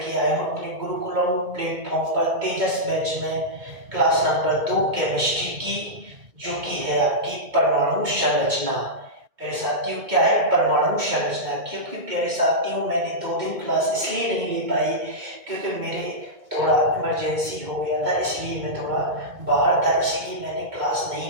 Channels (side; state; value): left; late; 2.2 ms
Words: आया हूँ अपने गुरुकुलम प्लेटफॉर्म पर तेजस बैच में क्लास नंबर 2 केमिस्ट्री की, जो कि है आपकी परमाणु संरचना। प्यारे साथियों, क्या है परमाणु संरचना? क्योंकि प्यारे साथियों, मैंने 2 दिन क्लास इसलिए नहीं ले पाई क्योंकि मेरे थोड़ा इमरजेंसी हो गया था, इसलिए मैं थोड़ा बाहर था, इसलिए मैंने क्लास